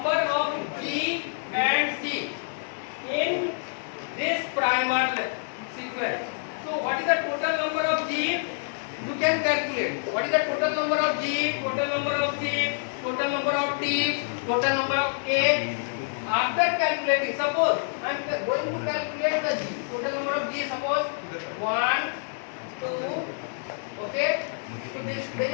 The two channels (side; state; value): right; silent; digital silence